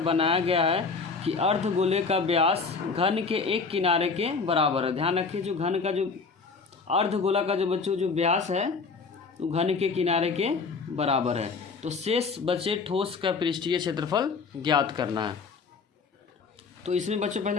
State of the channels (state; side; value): quieter; right; 4.8 dB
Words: बनाया गया है कि अर्धगोले का व्यास घन के एक किनारे के बराबर है। ध्यान रखिए जो घन का जो अर्धगोला का जो बच्चों जो व्यास है वो घन के किनारे के बराबर है। तो शेष बचे ठोस का पृष्ठीय क्षेत्रफल ज्ञात करना है। तो इसमें बच्चों